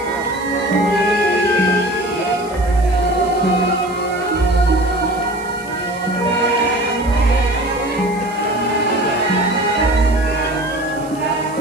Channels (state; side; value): noise; right; hiss, 22 dB below the sound